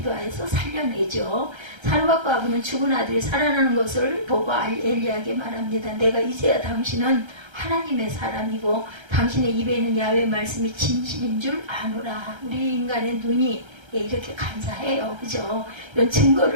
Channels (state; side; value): late; left; 1.3 ms